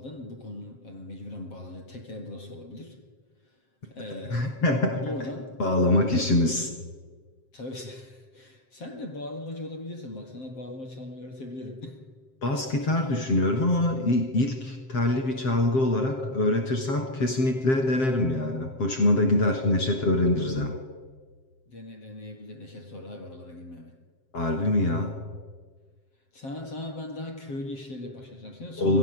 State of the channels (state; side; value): late; right; 7.6 ms